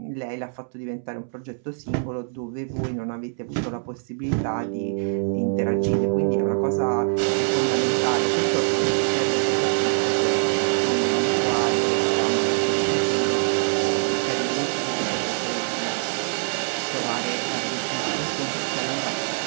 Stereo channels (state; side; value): silent; left; 63 dB below the other